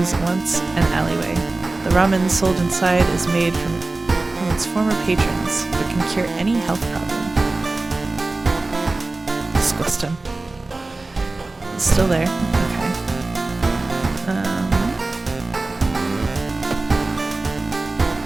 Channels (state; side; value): quieter; left; 3.3 dB